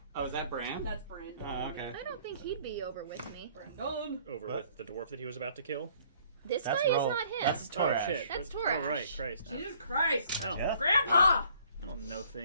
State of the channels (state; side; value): inverted; both; correlation -0.59